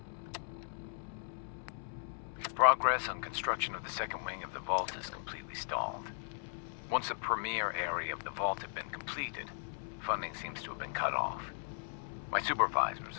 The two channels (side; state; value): right; silent; 53 dB below the other